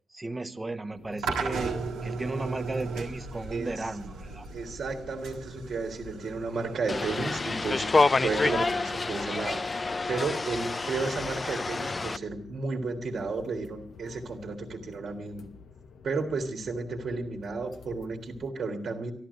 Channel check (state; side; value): normal; both; correlation 0.86